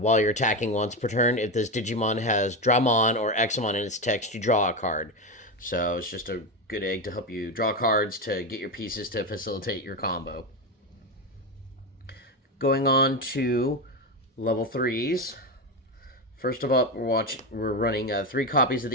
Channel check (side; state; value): both; normal; correlation 0.14